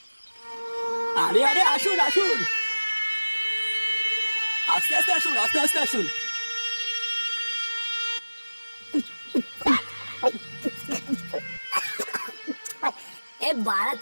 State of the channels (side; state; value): both; inverted; correlation -1.00